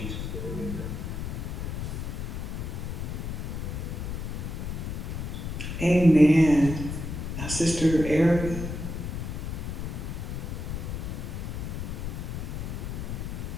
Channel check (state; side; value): noise; left; rumble, 4 dB below the sound